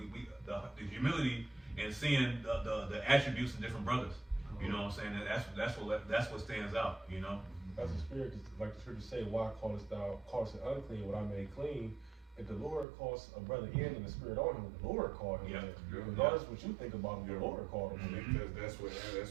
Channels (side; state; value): left; drops out; at 12.9 s